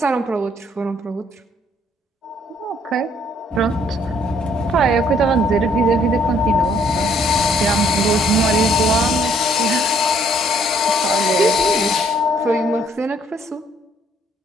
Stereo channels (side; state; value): both; normal; correlation 0.65